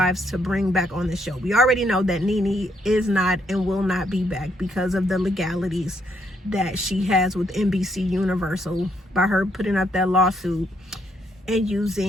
to bring back on the show. We already know that Nene is not and will not be back because of the legalities that she has with NBC Universal by her putting up that lawsuit and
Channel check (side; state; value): both; normal; correlation 0.73